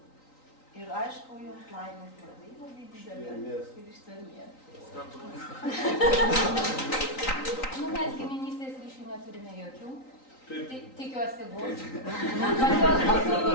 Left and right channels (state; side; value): late; right; 3.9 ms